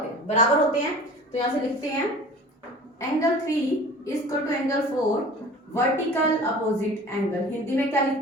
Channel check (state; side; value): normal; both; correlation 0.42